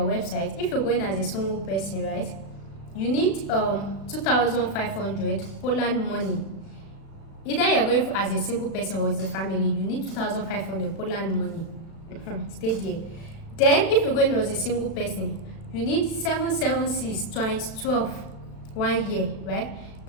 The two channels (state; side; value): late; right; 36 ms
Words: if you're going as a single person, right, you need 2,500 Poland money. Either you're going as a single person or as a family, you need 2,500 Poland money. Stay there. Then if you're going as a single person, you need 776 times 12 1 year, right?